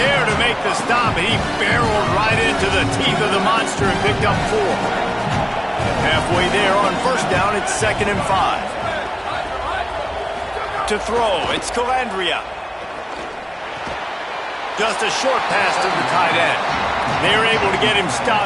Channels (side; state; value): both; identical; correlation 1.00